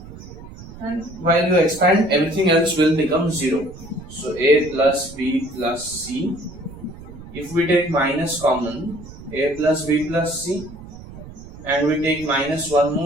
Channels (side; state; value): right; noise; rumble, 16 dB below the sound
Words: And while you expand, everything else will become 0. So A plus B plus C. If we take minus common, A plus B plus C, and we take minus one